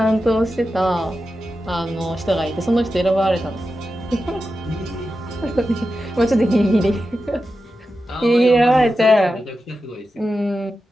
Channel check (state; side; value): normal; both; correlation 0.91